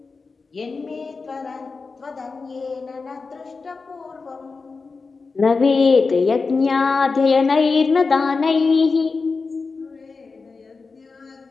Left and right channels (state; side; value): quieter; right; 4.4 dB